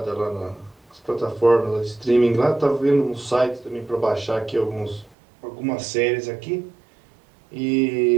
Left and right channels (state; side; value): drops out; left; at 5.2 s